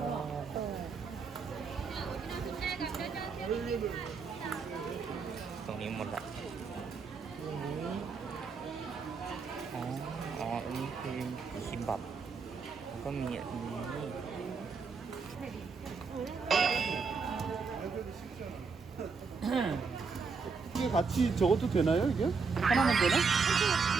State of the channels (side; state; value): left; quieter; 5.0 dB